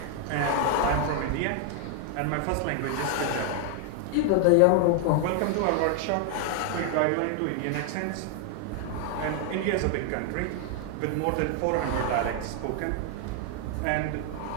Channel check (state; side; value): different; both; correlation 0.00